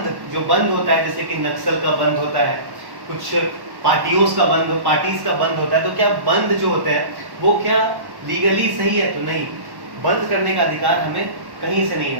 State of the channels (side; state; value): left; late; 1.1 ms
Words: जो बंद होता है, जैसे कि नक्सल का बंद होता है, कुछ पार्टीज का बंद होता है, तो क्या बंद जो होते हैं वो क्या लीगली सही है? तो नहीं, बंद करने का अधिकार हमें कहीं से नहीं